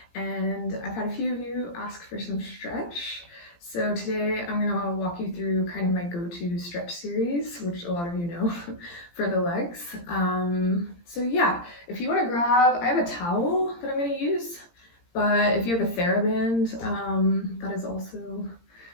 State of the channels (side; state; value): right; late; 17 ms